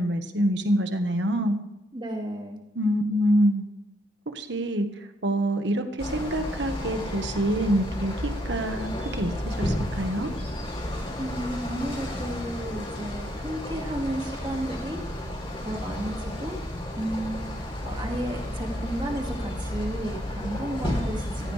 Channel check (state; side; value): normal; both; correlation 0.73